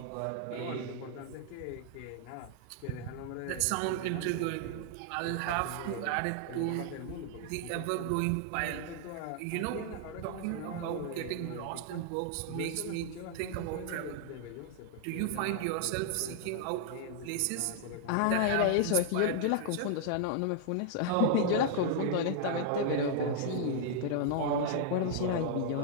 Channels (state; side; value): different; both; correlation -0.01